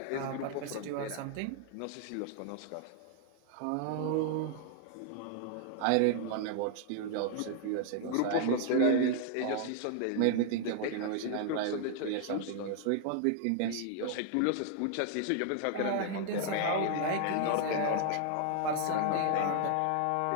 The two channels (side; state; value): both; different; correlation 0.00